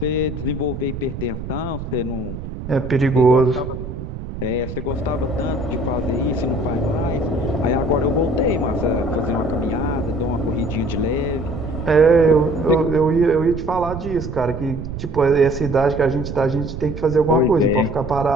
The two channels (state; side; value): noise; right; rumble, 8 dB below the sound